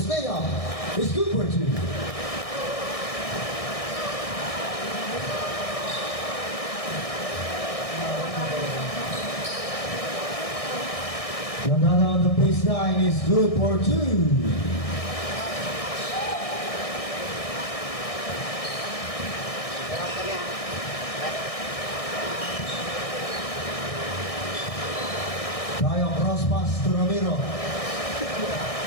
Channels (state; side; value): late; right; 1.6 ms